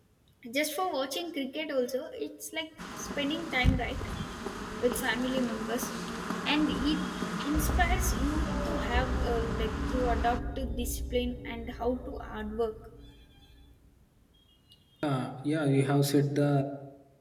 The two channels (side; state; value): both; identical; correlation 1.00